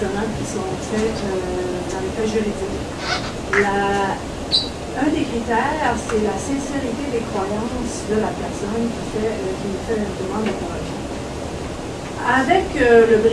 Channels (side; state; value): both; identical; correlation 1.00